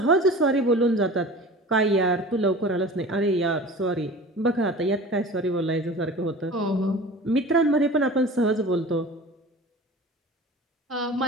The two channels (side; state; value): both; normal; correlation 0.39